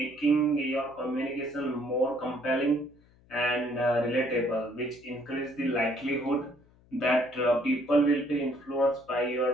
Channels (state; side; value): noise; left; hum, 29 dB below the sound